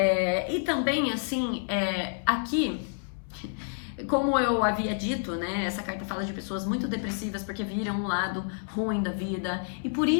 E também, assim, aqui, como eu havia dito, né, essa carta fala de pessoas muito depressivas porque viram um lado ruim da vida e por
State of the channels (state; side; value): silent; right; digital silence